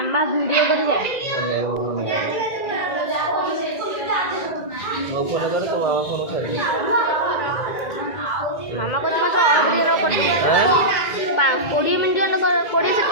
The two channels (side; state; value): right; late; 1.9 ms